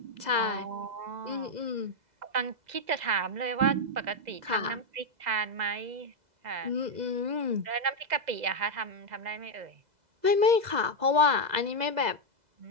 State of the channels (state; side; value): late; left; 2.0 ms